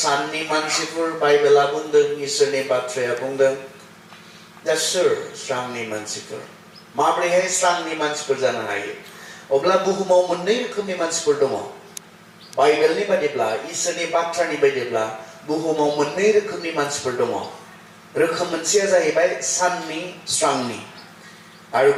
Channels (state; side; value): identical; both; correlation 1.00